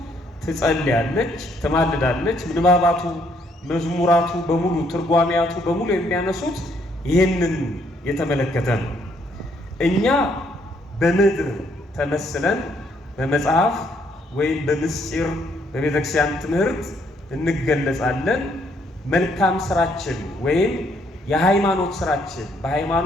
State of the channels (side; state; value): both; normal; correlation 0.69